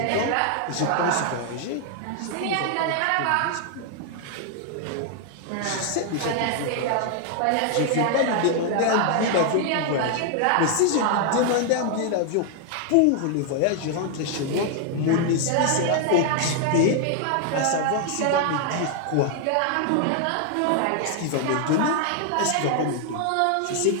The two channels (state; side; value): different; both; correlation 0.00